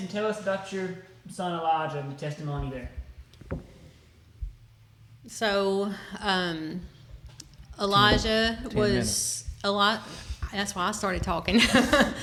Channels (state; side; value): identical; both; correlation 1.00